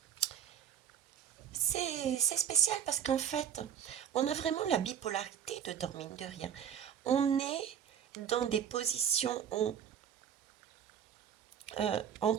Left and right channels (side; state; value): left; quieter; 8.8 dB